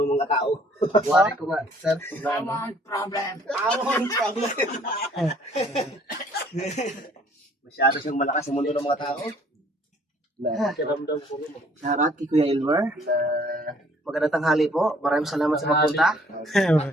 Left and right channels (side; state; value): both; normal; correlation 0.59